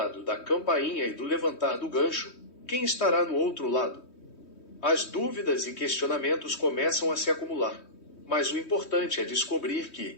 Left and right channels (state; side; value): late; right; 3.1 ms